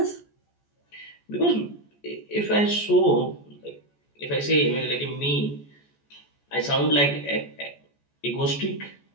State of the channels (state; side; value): late; right; 14 ms